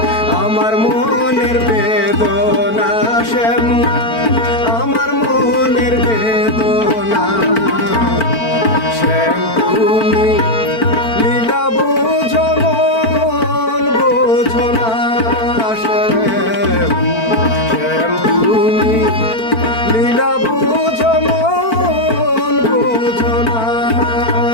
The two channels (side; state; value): right; late; 4.5 ms